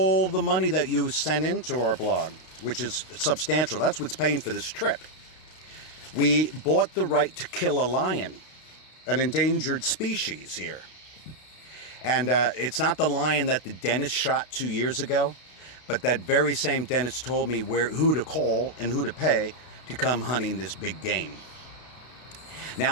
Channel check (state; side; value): late; right; 32 ms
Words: the money that you sent into our blog, which is substantial. That's what's paying for this trip. We bought the right to kill a lion, an endangered species here. And it's not the lion that the dentist shot 2 years ago, but that very same dentist told me who to call and who to pay to come hunting this big game.